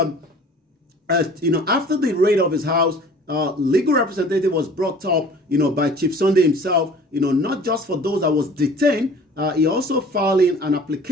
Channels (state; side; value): normal; both; correlation 0.47